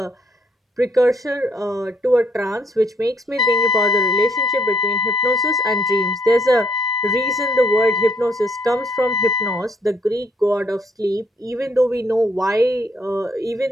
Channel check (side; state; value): both; normal; correlation 0.68